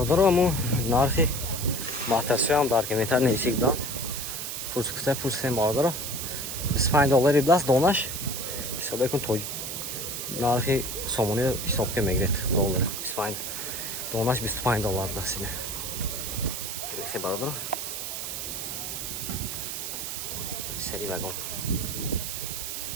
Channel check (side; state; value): right; noise; hiss, 5 dB below the sound